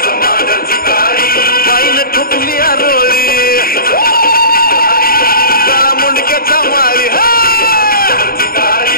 माईन ठुकली आरोळी काळा मुंडक्याच्या माळी.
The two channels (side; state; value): right; late; 0.43 ms